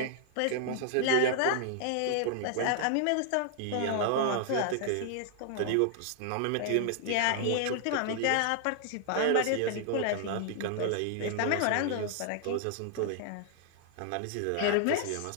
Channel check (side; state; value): both; different; correlation 0.00